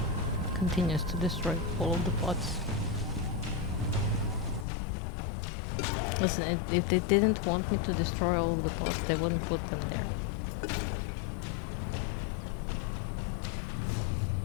continues to destroy all of the pots. Listen, if they didn't want me to destroy all of the pots, they wouldn't put them there.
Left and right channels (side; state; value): right; drops out; at 4.7 s